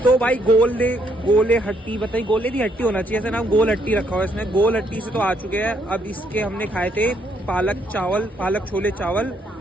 तो भाई गोले हट्टी बताइए, गोले की हट्टी होना चाहिए, ऐसा नाम गोल हट्टी रखा हुआ है इसने। गोल हट्टी से तो आ चुके हैं। अब इसके हमने खाए थे पालक छोले चावल,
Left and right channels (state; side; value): normal; both; correlation 0.72